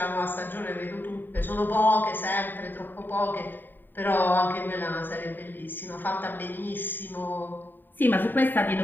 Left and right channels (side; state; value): right; late; 0.092 ms